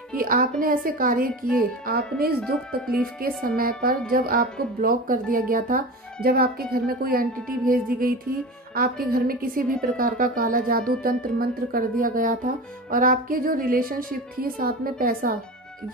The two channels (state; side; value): normal; both; correlation 0.30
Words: कि आपने ऐसे कार्य किए। आपने इस दुख तकलीफ के समय पर, जब आपको ब्लॉक कर दिया गया था, जब आपके घर में कोई एंटिटी भेज दी गई थी, आपके घर में किसी भी प्रकार का काला जादू तंत्र मंत्र कर दिया गया था, और आपके जो रिलेशनशिप थी साथ में पैसा,